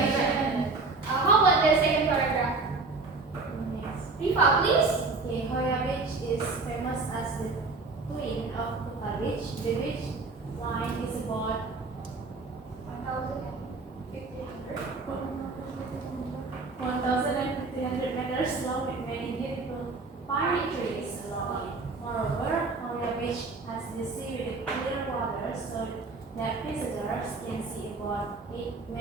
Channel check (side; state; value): left; quieter; 3.8 dB